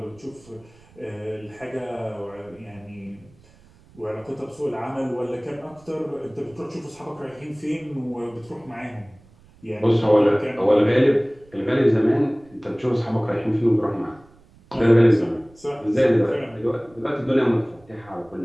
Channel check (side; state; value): right; noise; rumble, 27 dB below the sound